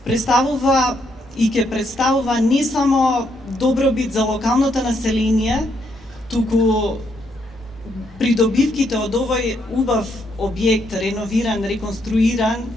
представува и ќе представува не само добробит за локалното население, туку придобивките од овој убав објект, реновиран, реконструиран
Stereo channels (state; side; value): normal; both; correlation 0.75